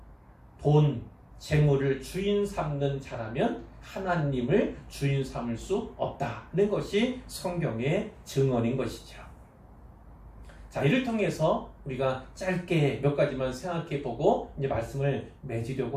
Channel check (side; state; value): both; identical; correlation 1.00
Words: 돈, 재물을 주인 삼는 자라면 하나님을 주인 삼을 수 없다는 것이 성경의 증언인 것이죠. 자, 이를 통해서 우리가 짧게 몇 가지만 생각해 보고 이제 말씀을 맺으려고